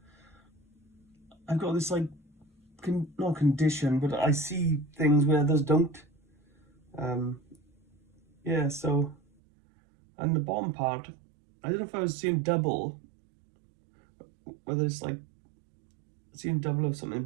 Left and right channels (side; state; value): left; drops out; at 9.2 s